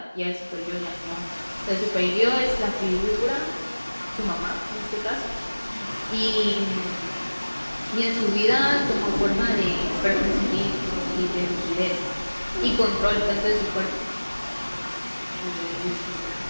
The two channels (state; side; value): inverted; both; correlation -1.00